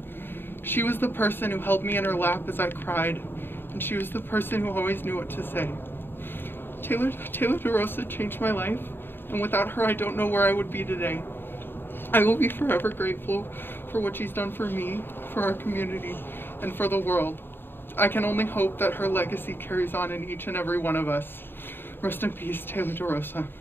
She was the person who held me in her lap as I cried, and she was the person who always knew what to say. Taylor DeRosa changed my life, and without her, I don't know where I would be today. I will be forever grateful for what she's done for me, for our community, and for the world. I can only hope that her legacy carries on in each and every one of us. Rest in peace, Taylor DeRosa.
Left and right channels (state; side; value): late; right; 0.10 ms